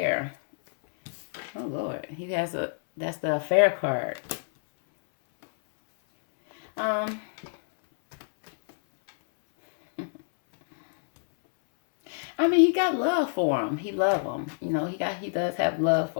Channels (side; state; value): right; silent; 60 dB below the other